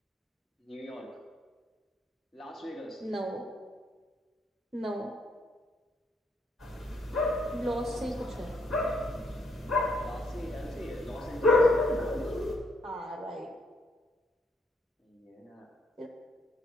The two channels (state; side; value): normal; both; correlation 0.72